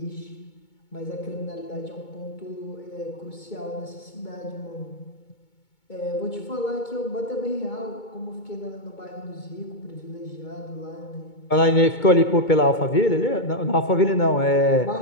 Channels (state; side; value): late; right; 2.2 ms